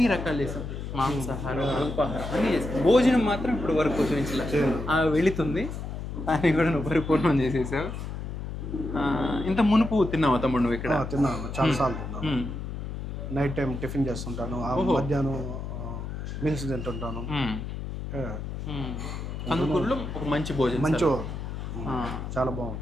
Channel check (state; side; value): noise; left; hum, 6 dB below the sound